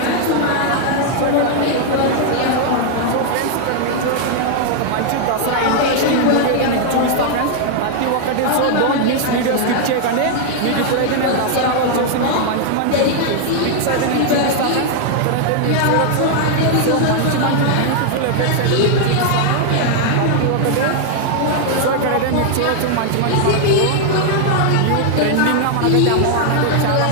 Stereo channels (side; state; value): both; different; correlation 0.00